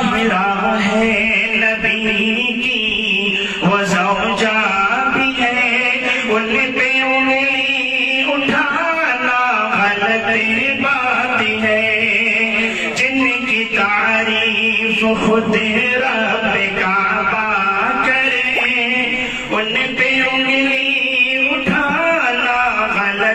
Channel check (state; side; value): identical; both; correlation 1.00